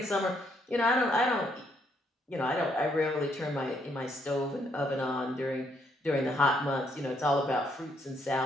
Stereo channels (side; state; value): both; normal; correlation 0.72